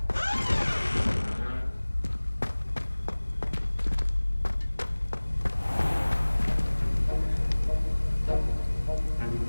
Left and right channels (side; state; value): both; inverted; correlation -1.00